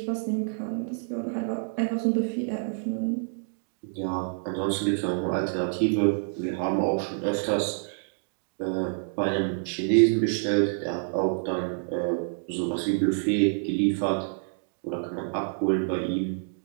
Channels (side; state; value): left; silent; digital silence